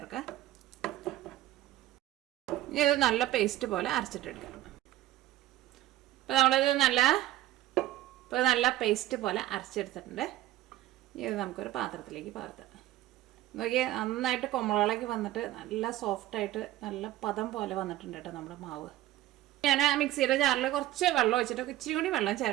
ഇനി ഇത് നല്ല പേസ്റ്റ് പോലെ അരച്ചിട്ടെടുക്കാം. ഇപ്പോൾ നമ്മളിത് നല്ല പേസ്റ്റ് പോലെ അരച്ചെടുത്തിട്ടുണ്ട്. ഇത് നമുക്കൊരു പാത്രത്തിലേക്ക് പകർത്താം. നോക്കിയാൽ നന്നായിട്ട് കൊമ്മളകളൊക്കെ വന്നിട്ട് നല്ല സോഫ്റ്റായിട്ട് നല്ല പദം പോലെ വന്നിട്ടുണ്ട് കേട്ടോ നമ്മുടെ മാവ്. ഞാൻ മിക്സിയുടെ ജാറിൽ കുറച്ച് വെള്ളം ഒഴിച്ചിട്ട് ഇച്ചിരി കൂടി വെള്ളം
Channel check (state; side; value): quieter; left; 15.0 dB